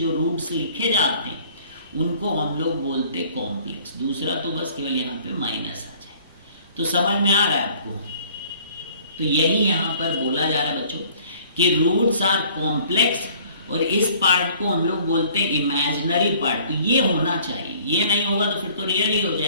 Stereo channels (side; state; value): both; inverted; correlation -0.54